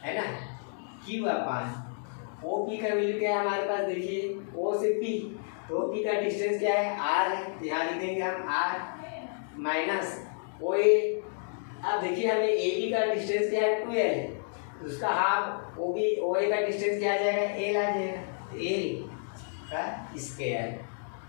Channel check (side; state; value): right; silent; digital silence